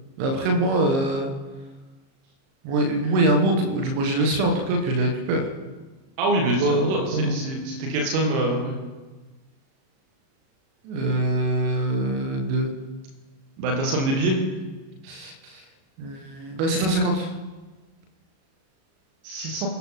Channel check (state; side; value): late; left; 37 ms